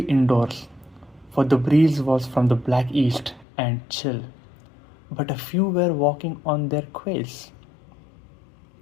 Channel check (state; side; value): drops out; right; at 3.5 s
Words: for the breeze was from the black east and chill, but a few were walking on their quails